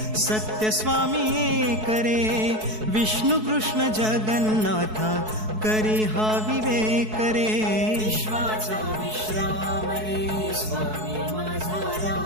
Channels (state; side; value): late; left; 4.6 ms